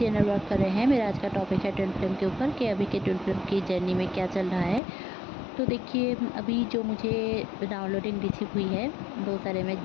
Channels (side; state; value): right; drops out; at 4.8 s